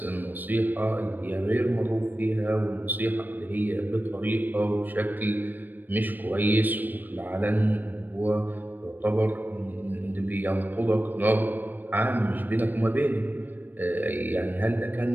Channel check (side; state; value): left; late; 0.090 ms